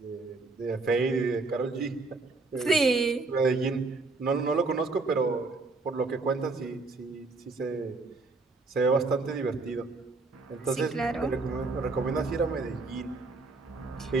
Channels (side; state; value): left; quieter; 3.7 dB